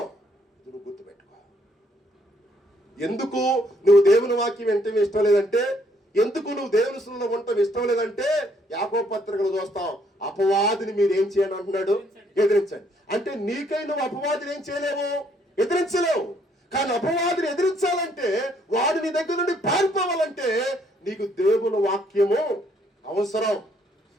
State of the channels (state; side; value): normal; both; correlation 0.68